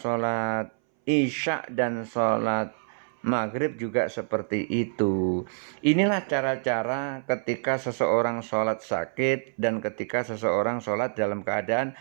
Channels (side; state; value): left; silent; 60 dB below the other